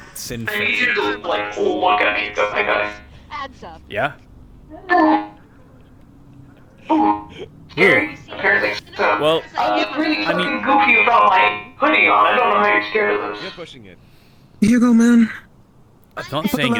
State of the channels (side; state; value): both; identical; correlation 1.00